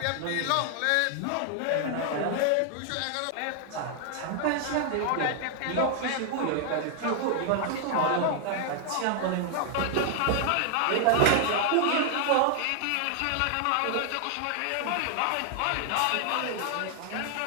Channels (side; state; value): both; different; correlation 0.00